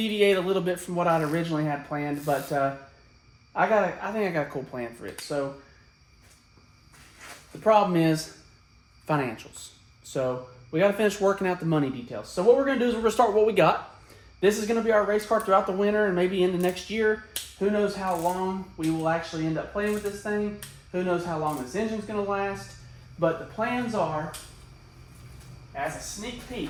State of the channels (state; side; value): identical; both; correlation 1.00